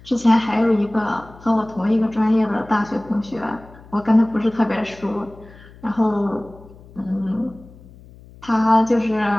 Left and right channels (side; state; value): left; noise; hum, 22 dB below the sound